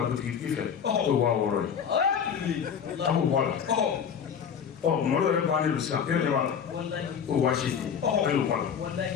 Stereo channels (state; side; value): quieter; right; 7.4 dB